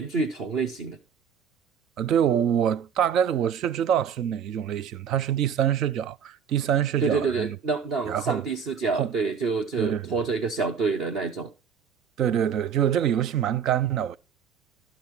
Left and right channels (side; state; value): left; quieter; 7.4 dB